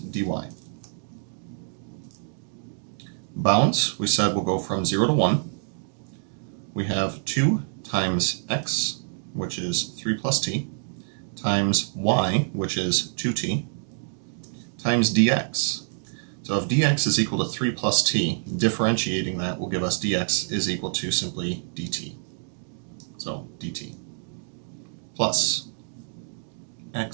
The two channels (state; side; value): silent; left; digital silence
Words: Bounds, we said, will go from 0 to 1. We have 2 times x, which is 3 plus t, times y, which is 2t, times dx. So if dx is equal to 3 plus t, differentiating that will give us dx is equal to simply dt. So dt plus